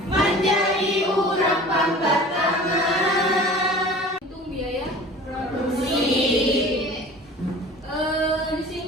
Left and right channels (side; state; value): both; normal; correlation 0.42